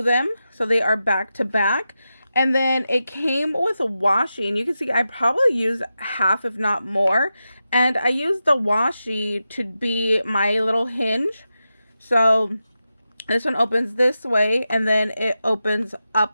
them so they are back to back. And then it came with a washi, and you can see I probably used half if not more. And I used the washi to be my little hinge. So this one opens this way and then it opens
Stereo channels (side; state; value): both; inverted; correlation -0.91